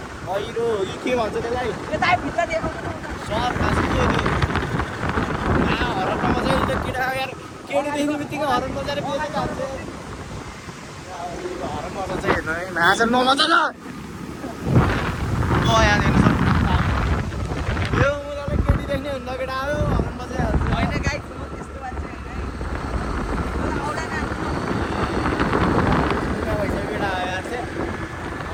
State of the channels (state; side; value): identical; both; correlation 1.00